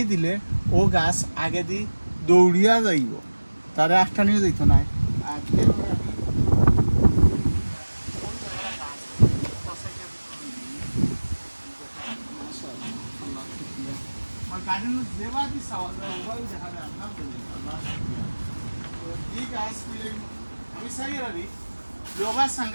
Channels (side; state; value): both; inverted; correlation -1.00